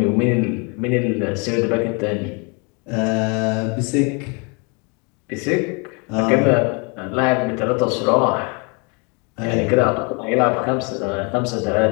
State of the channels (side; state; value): right; quieter; 32.9 dB